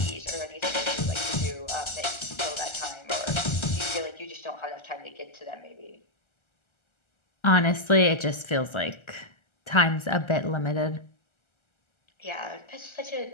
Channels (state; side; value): late; right; 1.3 ms